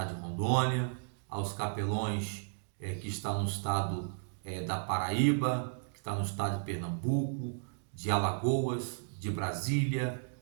de Rondônia, aos capelões que estão no estado da Paraíba, que está no estado de Pernambuco, de Alagoas, de Brasília,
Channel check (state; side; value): silent; left; digital silence